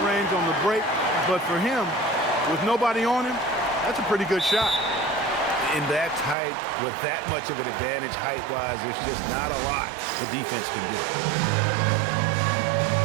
range on the break, but for him, with nobody on him, that's a pretty good shot. In that height, with that much of an advantage height-wise, there's just not a lot the defense can do.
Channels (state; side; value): drops out; left; at 6.4 s